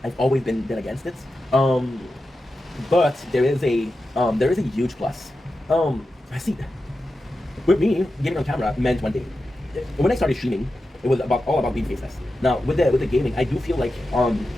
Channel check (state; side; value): normal; both; correlation 0.91